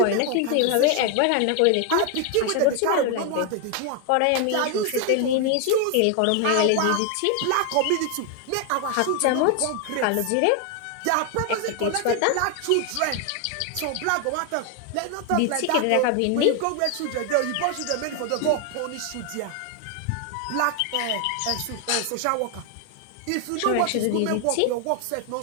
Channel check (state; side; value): different; both; correlation 0.01